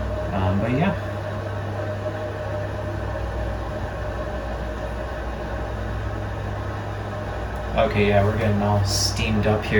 But yeah. Okay, yeah, we're getting all steamed up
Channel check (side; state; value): both; identical; correlation 1.00